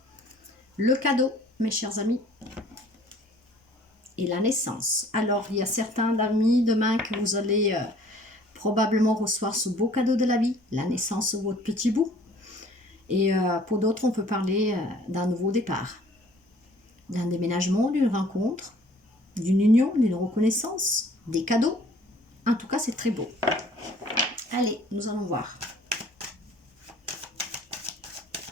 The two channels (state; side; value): normal; both; correlation 0.55